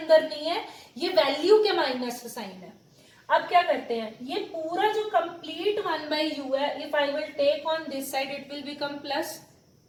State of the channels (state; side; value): identical; both; correlation 1.00